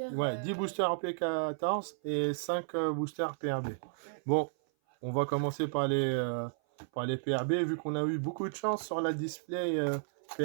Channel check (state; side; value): silent; left; 56 dB below the other